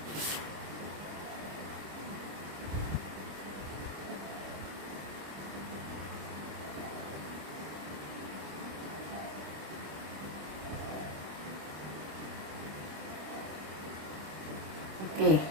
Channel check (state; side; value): late; left; 26 ms